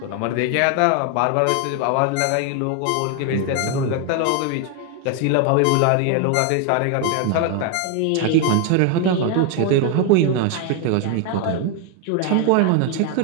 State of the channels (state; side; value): different; both; correlation 0.01